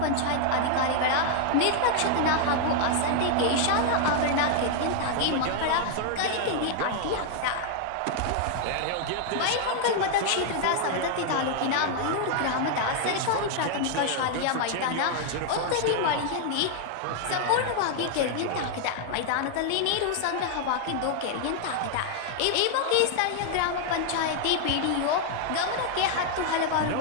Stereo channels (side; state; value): both; different; correlation 0.00